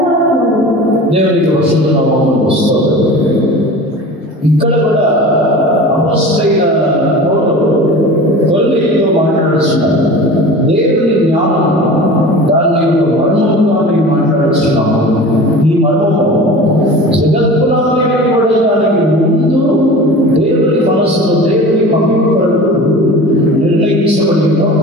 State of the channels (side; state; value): both; normal; correlation 0.37